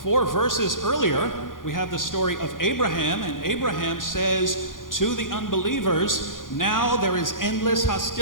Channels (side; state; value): right; late; 0.90 ms